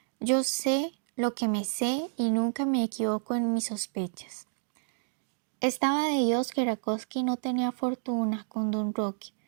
Yo sé lo que me sé y nunca me equivoco en mis sospechas». Estaba de Dios que Rakowski no tenía fortuna con don Roque,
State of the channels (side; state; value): left; silent; digital silence